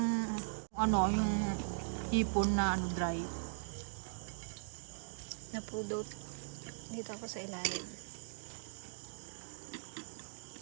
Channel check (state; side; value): silent; left; digital silence